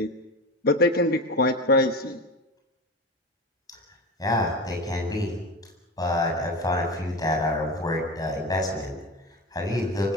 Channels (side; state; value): both; normal; correlation 0.26